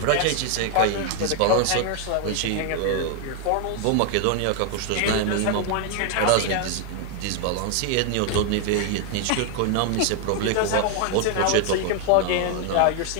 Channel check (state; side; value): different; both; correlation 0.00